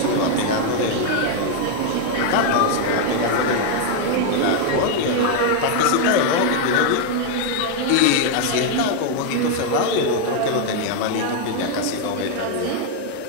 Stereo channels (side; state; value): both; different; correlation 0.00